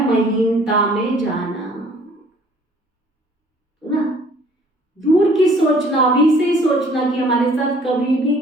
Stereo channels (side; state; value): both; normal; correlation 0.56